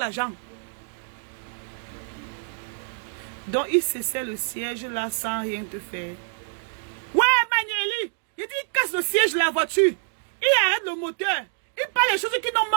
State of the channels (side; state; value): left; silent; digital silence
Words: Donc, il cessait le siège là sans rien te faire. Ouais, Manueli, il dit qu'il casse le siège de la voiture. Il arrête le moteur. Il parle des choses qui n'ont